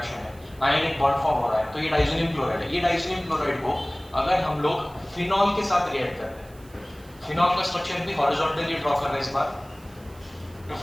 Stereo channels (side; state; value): right; noise; hiss, 26 dB below the sound